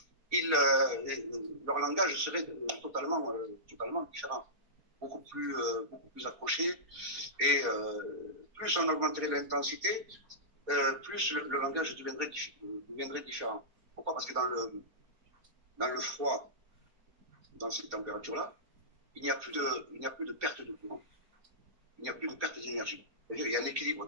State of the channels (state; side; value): late; left; 4.3 ms